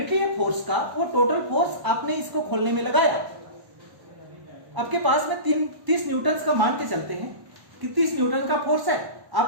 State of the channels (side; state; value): left; late; 1.0 ms